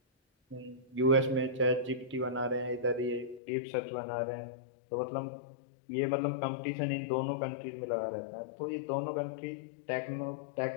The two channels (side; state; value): right; drops out; at 3.4 s